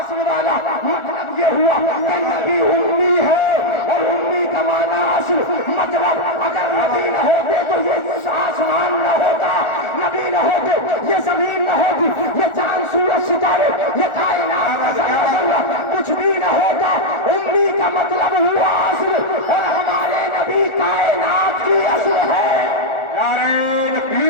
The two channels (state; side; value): late; right; 1.4 ms